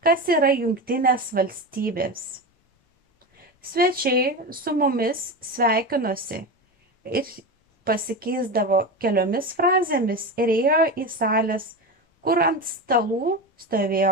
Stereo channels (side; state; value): both; normal; correlation 0.22